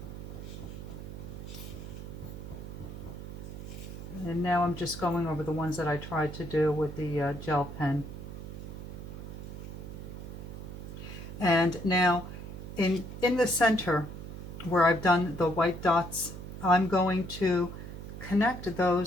And now I'm just going over the ones that I tried to do with the gel pen. And now in the center where I've done the white dots, I'm going to connect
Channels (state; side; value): noise; right; hum, 10 dB below the sound